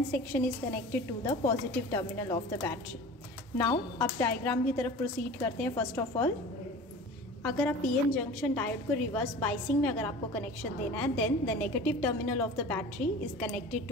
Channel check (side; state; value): both; normal; correlation 0.38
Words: section is connected to the positive terminal of the battery. Now अब diagram की तरफ proceed करते हैं. First of all, अगर आप PN junction diode को reverse biasing में अगर आपको कनेक्शन देना है, then the negative terminal of the battery is connected